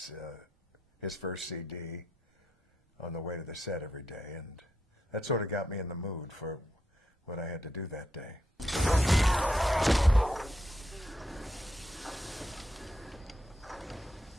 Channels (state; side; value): normal; both; correlation 0.81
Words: first CD on the way to the set every day, and that sort of got me in the mood for what I had to do that day.